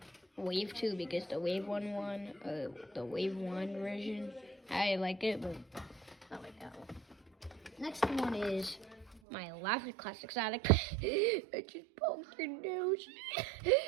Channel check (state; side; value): drops out; left; at 9.2 s